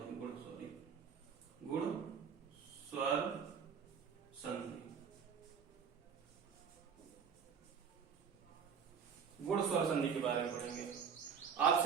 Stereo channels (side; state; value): left; quieter; 6.8 dB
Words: सॉरी गुण स्वर संधि। गुण स्वर संधि के बारे में पढ़ेंगे।